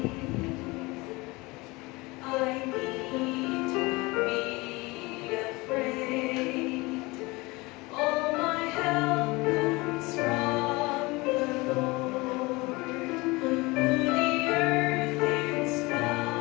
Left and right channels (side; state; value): right; quieter; 23.5 dB